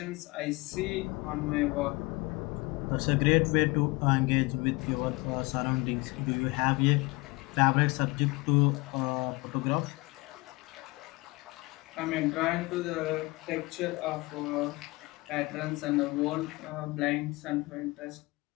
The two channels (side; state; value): right; quieter; 23.9 dB